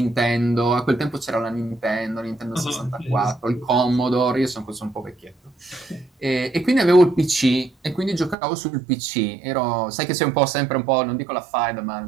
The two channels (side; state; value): left; drops out; at 8.3 s